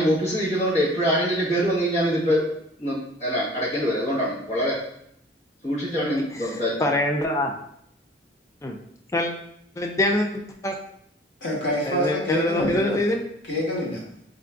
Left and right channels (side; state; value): both; normal; correlation 0.47